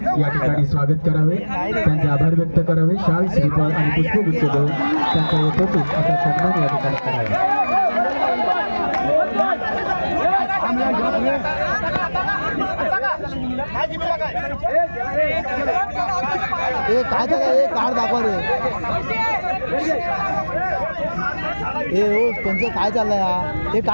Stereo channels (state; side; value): inverted; both; correlation -1.00